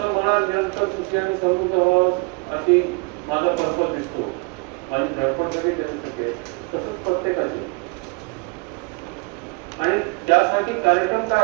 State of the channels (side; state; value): left; quieter; 31.4 dB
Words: मला निरंतर सुखी आणि समृद्ध व्हावं अशी माझा पर्पज दिसतो, माझी धडपड सगळी त्याच्यासाठी आहे, तसंच प्रत्येकाची. आणि त्यासाठी कार्यक्रम